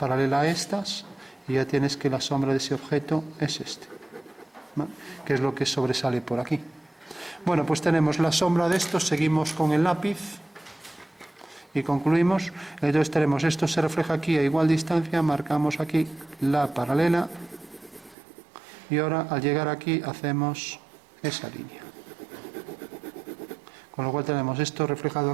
a estas y ya tienes que la sombra de ese objeto es este, ¿no? Que es lo que sobresale por aquí. Bueno, pues tenemos la sombra de esto, seguimos con el lápiz y concluimos. Entonces tenemos esto se refleja aquí a igual distancia, marcamos aquí la paralela y ahora al llegar aquí hacemos esa línea. Con lo cual tenemos esto reflejado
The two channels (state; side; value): drops out; left; at 18.2 s